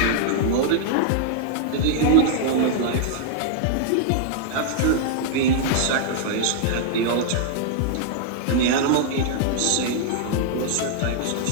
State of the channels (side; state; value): both; different; correlation -0.01